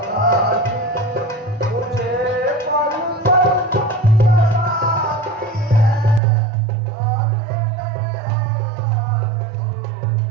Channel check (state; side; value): drops out; left; at 6.2 s